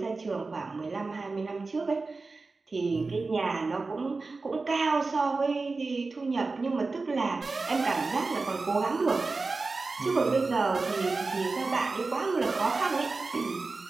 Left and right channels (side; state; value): left; quieter; 3.8 dB